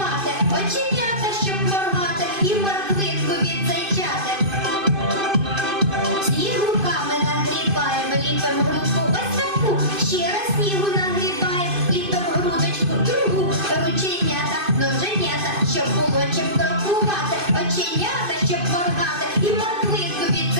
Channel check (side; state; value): left; late; 2.5 ms